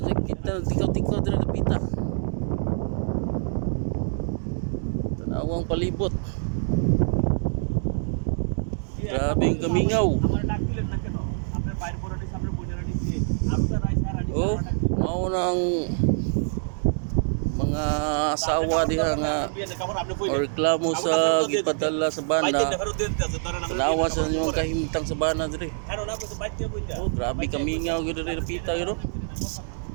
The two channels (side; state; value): left; silent; digital silence